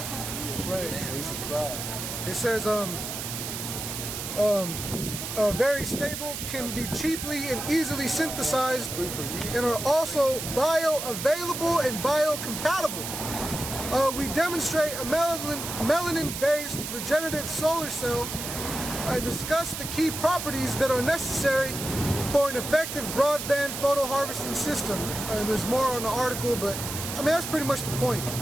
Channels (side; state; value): right; noise; hiss, 6 dB below the sound